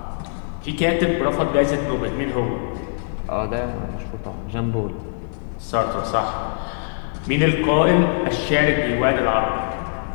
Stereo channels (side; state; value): right; silent; digital silence